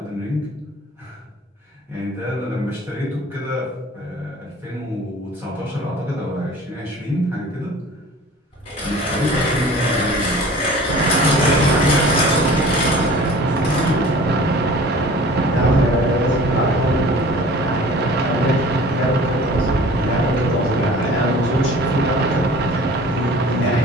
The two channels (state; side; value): normal; both; correlation 0.45